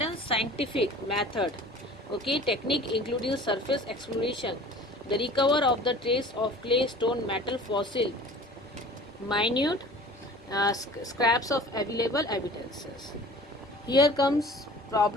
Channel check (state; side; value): normal; both; correlation 0.44